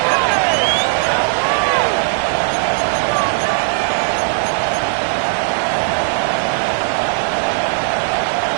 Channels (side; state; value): left; silent; digital silence